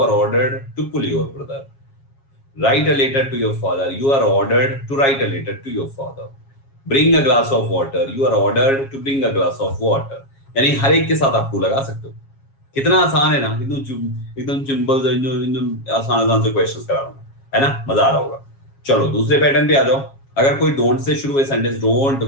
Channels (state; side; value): late; right; 7.3 ms